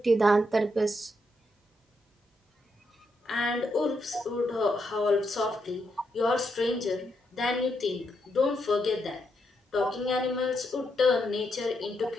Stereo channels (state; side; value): normal; both; correlation 0.80